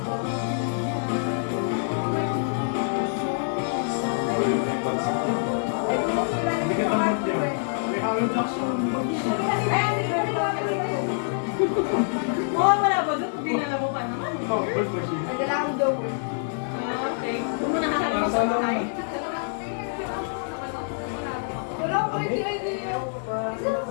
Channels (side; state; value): right; silent; digital silence